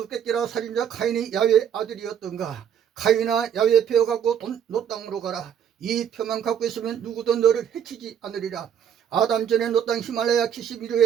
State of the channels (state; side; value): quieter; left; 8.7 dB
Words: 살인자 카인이 야훼의 아들이었던가. 카인아 야훼의 표 갖고 노 땅으로 가라. 이 표만 갖고 있으면 누구도 너를 해치지 않으리라. 아담 전에 노 땅 히말라야